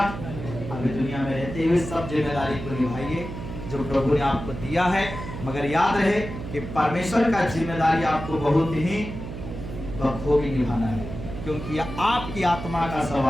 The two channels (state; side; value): noise; right; hum, 9 dB below the sound